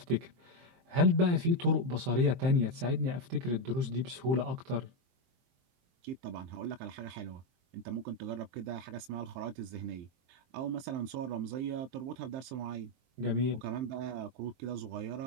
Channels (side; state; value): left; late; 23 ms